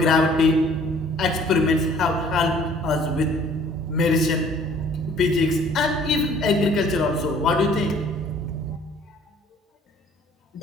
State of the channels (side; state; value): both; normal; correlation 0.55